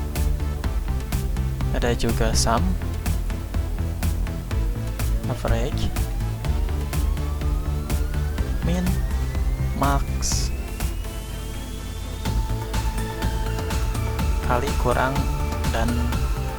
ada juga SUM, average, min, max, kali, kurang, dan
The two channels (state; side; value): identical; both; correlation 1.00